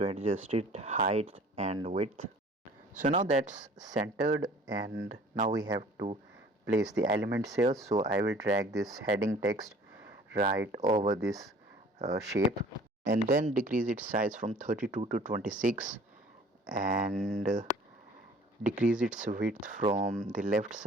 adjust it height and width. So now that's centered, and now we have to place the elements here. So I will drag this heading text right over this shape, and then decrease its size from 32 to 26, and decrease its width from the left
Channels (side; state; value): both; normal; correlation 0.50